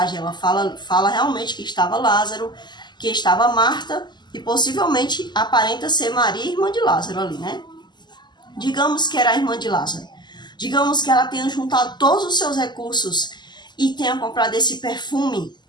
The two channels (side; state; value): right; late; 0.21 ms